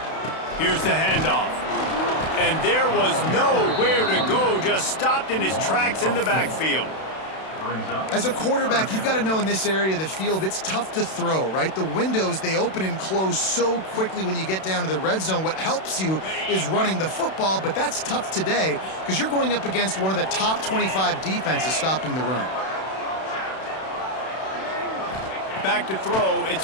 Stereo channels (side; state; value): right; late; 32 ms